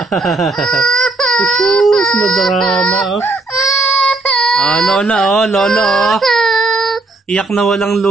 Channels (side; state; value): left; quieter; 3.2 dB